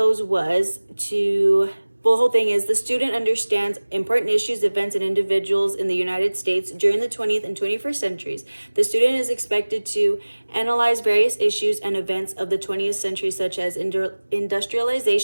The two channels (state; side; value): inverted; both; correlation -1.00